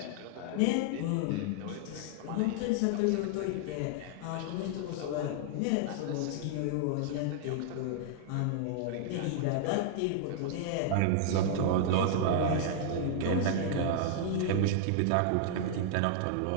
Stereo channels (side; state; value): both; different; correlation -0.01